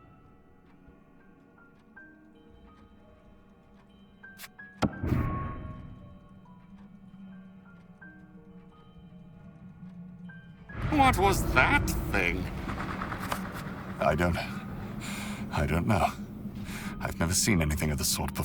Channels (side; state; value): both; identical; correlation 1.00